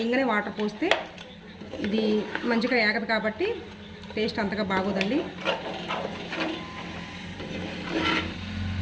వాటర్ పోస్తే ఇది మంచిగా ఏగదు కాబట్టి టేస్ట్ అంతగా బాగోదండి.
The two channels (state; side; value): identical; both; correlation 1.00